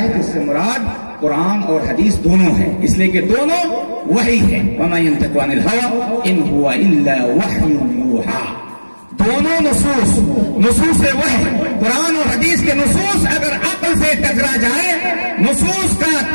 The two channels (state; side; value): inverted; both; correlation -1.00